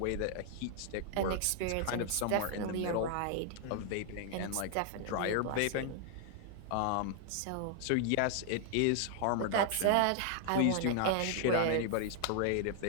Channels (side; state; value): both; different; correlation 0.00